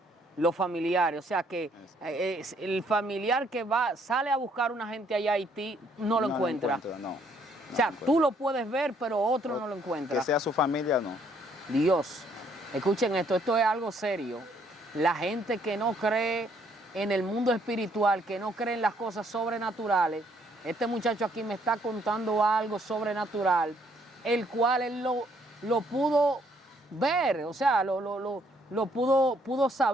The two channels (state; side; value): normal; both; correlation 0.67